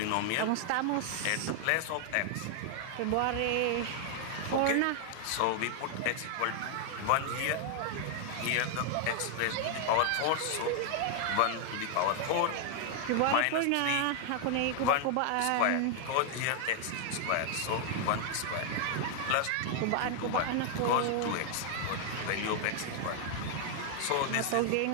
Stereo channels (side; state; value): both; different; correlation 0.00